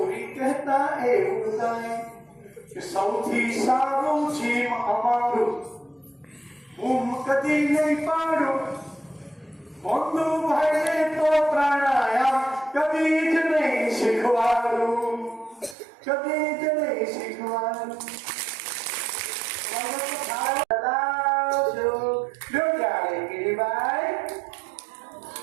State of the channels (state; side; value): drops out; left; at 15.8 s